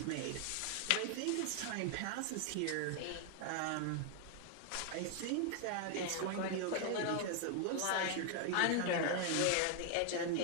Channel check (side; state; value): both; different; correlation 0.00